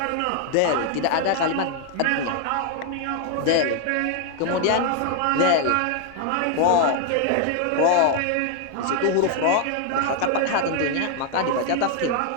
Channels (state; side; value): different; both; correlation 0.00